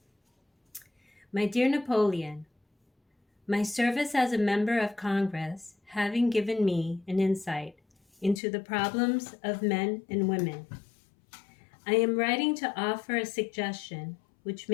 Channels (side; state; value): right; drops out; at 8.4 s